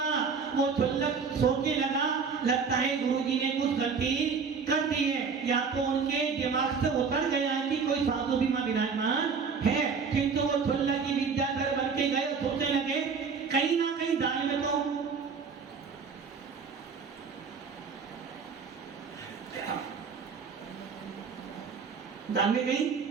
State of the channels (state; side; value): quieter; left; 5.6 dB